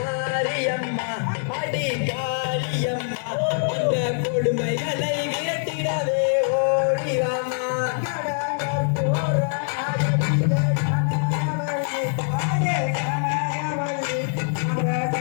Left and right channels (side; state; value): right; silent; digital silence